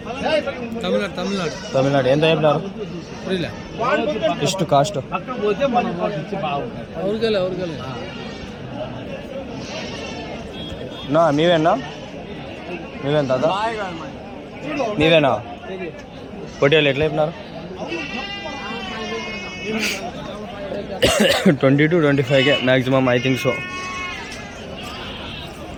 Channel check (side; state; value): both; identical; correlation 1.00